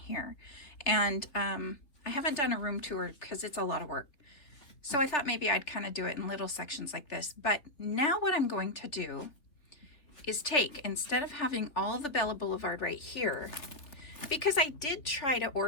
And I haven't done a room tour because it's a lot of work. So I thought maybe I'd kind of do it in little sections like this. But now what I'm going to do is take, instead of having all the Bella Boulevard right here, because I did try to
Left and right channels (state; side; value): late; right; 3.4 ms